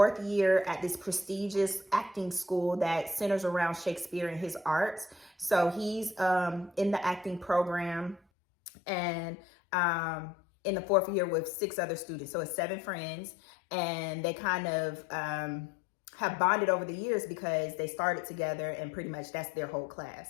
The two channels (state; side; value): drops out; right; at 8.2 s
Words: year at this prestigious acting school that centers around Shakespeare and his arts. So he's in the acting program, and in the 4th year with 6 other students. So it's 7 friends, and they kind of have bonded over the years because they started together, and pretty much that's their whole